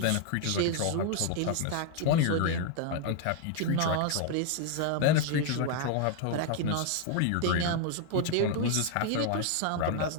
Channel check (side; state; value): both; different; correlation 0.00